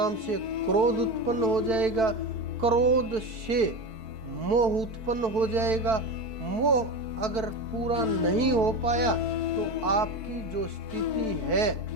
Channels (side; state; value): left; late; 4.5 ms